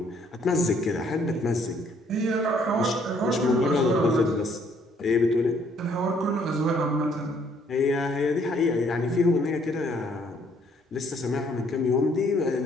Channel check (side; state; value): both; normal; correlation 0.65